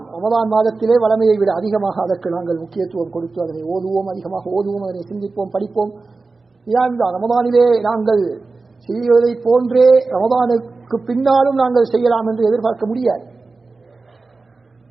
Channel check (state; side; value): quieter; left; 3.8 dB